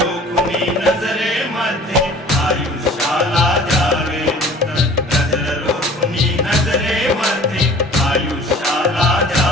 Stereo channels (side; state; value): both; normal; correlation 0.47